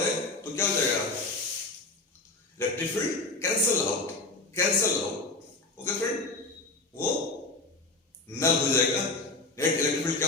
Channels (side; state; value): right; quieter; 3.3 dB